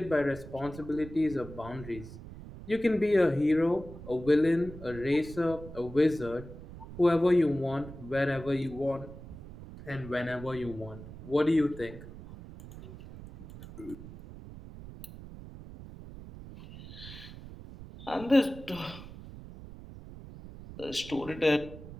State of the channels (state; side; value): noise; right; rumble, 14 dB below the sound